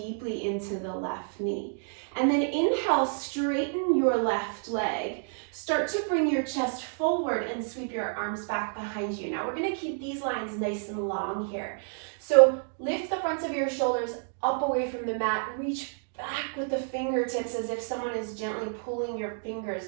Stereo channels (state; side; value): silent; left; 58 dB below the other